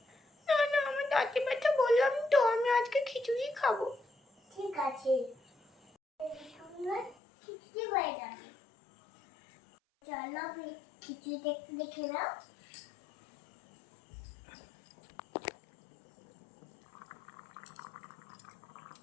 না না, আমার দাঁতে ব্যথা, বললাম তো আমি আজকে খিচুড়ি খাবো। ঠিক আছে, আমরা খিচুড়ি হয়ে যাবে। চলো আমি খিচুড়িটা একটু দেখে নাও।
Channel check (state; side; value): drops out; right; at 7.2 s